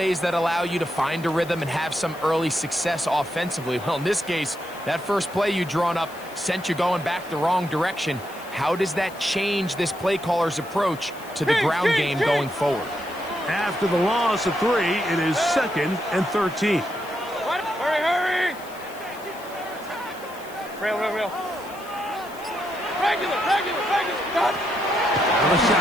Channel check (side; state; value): left; noise; hiss, 20 dB below the sound